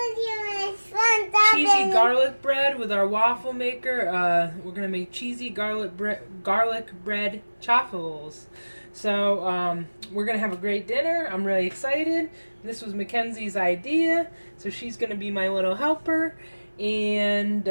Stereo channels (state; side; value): inverted; both; correlation -1.00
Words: cheesy garlic bread with our waffle maker. We're gonna make cheesy garlic bread chaffles. So we're gonna have a great dinner. I'm really excited. This was Mackenzie's idea, so she's gonna be my little helper. And